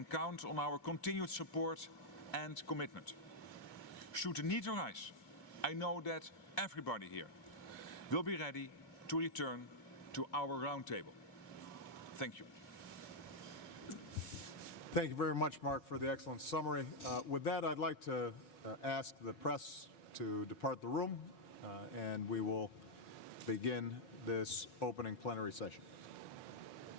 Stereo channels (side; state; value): right; late; 2.4 ms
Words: count on our continued support and commitment. Should the need arise, I know that everybody here will be ready to return to our roundtable. Thank you. Thank you very much, Mark, for the excellent summary. With that, I'd like to ask the press to depart the room, and we will begin this opening plenary session.